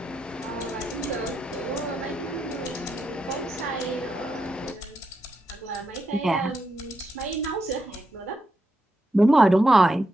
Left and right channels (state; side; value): normal; both; correlation 0.84